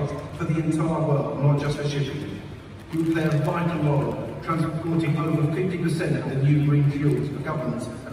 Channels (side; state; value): both; identical; correlation 1.00